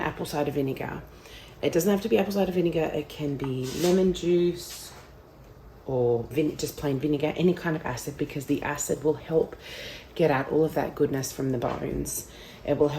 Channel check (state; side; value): identical; both; correlation 1.00